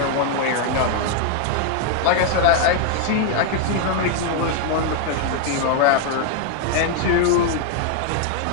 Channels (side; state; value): both; different; correlation 0.00